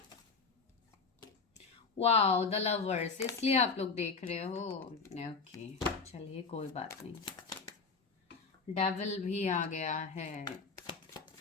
वाओ, द लवर्स, इसलिए आप लोग देख रहे हो। ओके, चलिए कोई बात नहीं। डेविल भी आ गया है।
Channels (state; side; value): quieter; right; 4.8 dB